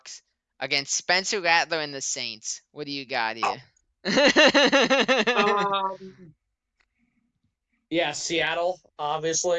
against Spencer Rattler and the Saints. What do you got here? Um, yeah, Seattle,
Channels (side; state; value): both; identical; correlation 1.00